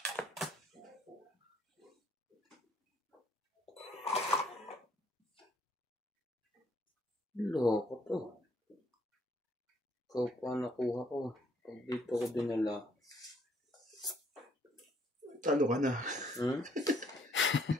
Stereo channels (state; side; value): normal; both; correlation 0.66